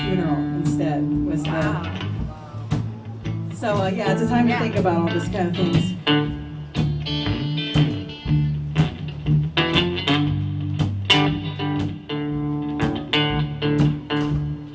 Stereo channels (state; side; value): identical; both; correlation 1.00